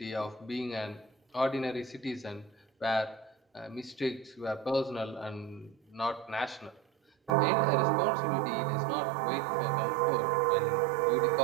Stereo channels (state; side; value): drops out; left; at 7.3 s